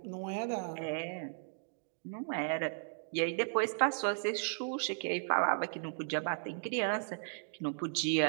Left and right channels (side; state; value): left; silent; digital silence